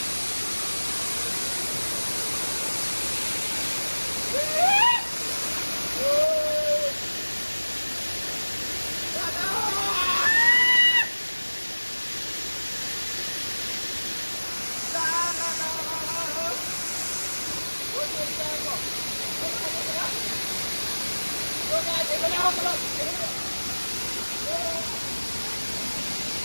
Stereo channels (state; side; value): inverted; both; correlation -1.00